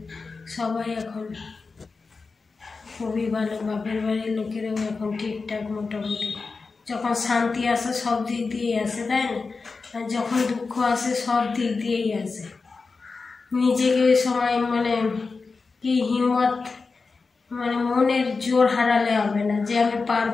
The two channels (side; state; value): right; quieter; 4.3 dB